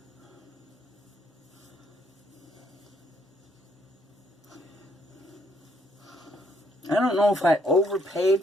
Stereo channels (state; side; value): normal; both; correlation 0.69